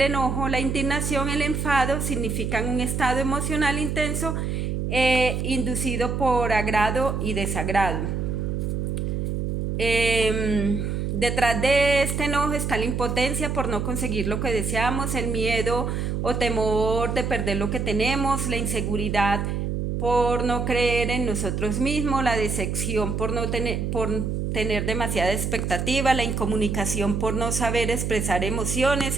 enojo, la indignación, el enfado, significan un estado emocional intenso inducido por agrado y desagrado. Detrás de este enojo está la impotencia por no conseguir lo que deseamos, el miedo o temor de perder lo que tenemos, la inseguridad por no creer en nosotros mismos, la decepción por tener demasiada expectativa, la incomunicación por no saber expresar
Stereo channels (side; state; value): right; noise; hum, 1 dB below the sound